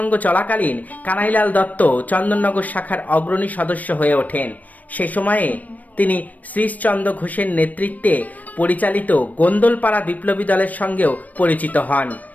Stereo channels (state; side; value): late; right; 0.075 ms